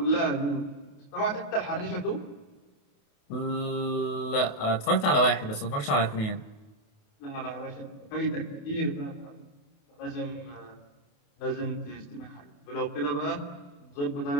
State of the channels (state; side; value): late; right; 28 ms